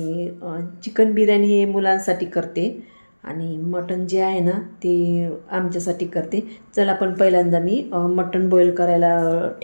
चिकन बिर्याणी हे मुलांसाठी करते आणि मटण जे आहे ना ते आमच्यासाठी करते. चला पण पहिल्यांदा मी मटण बॉईल करायला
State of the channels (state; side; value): inverted; both; correlation -1.00